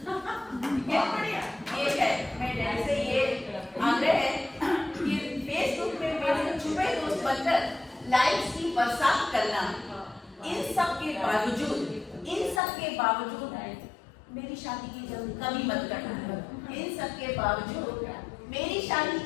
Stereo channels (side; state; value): right; drops out; at 12.6 s